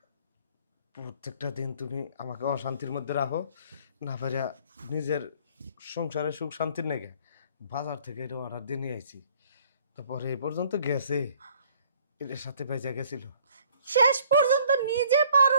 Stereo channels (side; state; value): both; inverted; correlation -0.59